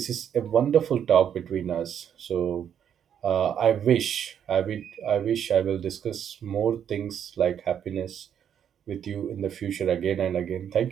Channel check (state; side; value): quieter; left; 8.9 dB